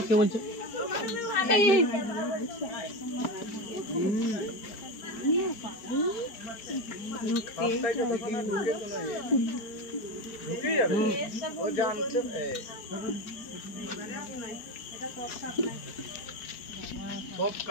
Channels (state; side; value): late; right; 4.7 ms